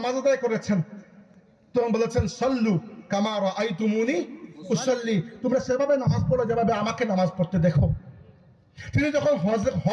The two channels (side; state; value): both; identical; correlation 1.00